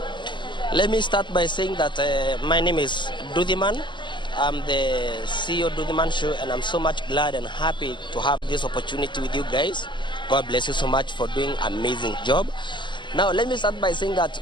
Let me start by saying that my name is Dudhiman. I'm the CEO of Dudhiman Show, and I'm so much glad and happy to have this opportunity with you guys. God bless you so much for doing an amazing job. Now, let me start by saying that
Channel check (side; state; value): right; late; 0.22 ms